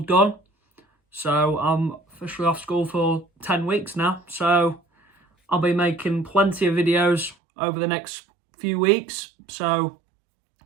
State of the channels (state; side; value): drops out; left; at 7.4 s